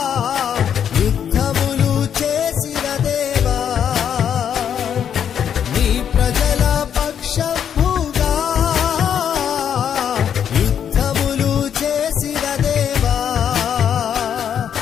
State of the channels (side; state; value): right; quieter; 8.6 dB